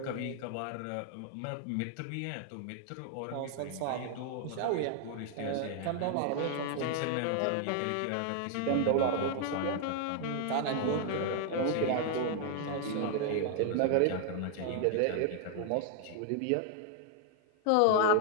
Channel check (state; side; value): different; both; correlation 0.00